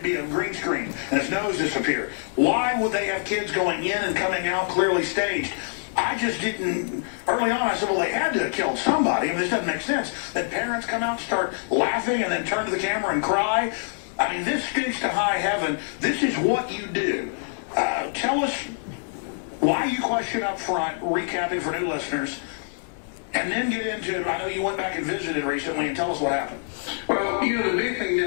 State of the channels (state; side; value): silent; right; digital silence